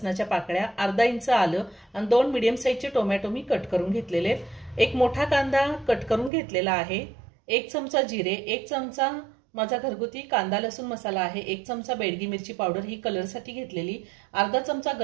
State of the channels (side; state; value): left; drops out; at 6.3 s